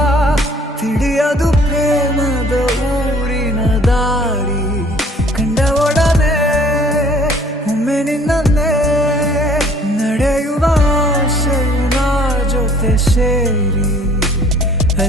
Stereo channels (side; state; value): both; normal; correlation 0.55